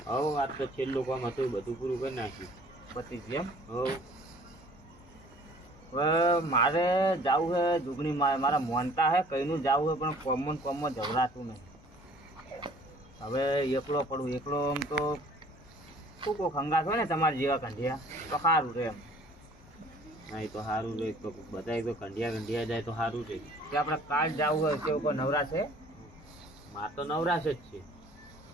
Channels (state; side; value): normal; both; correlation 0.53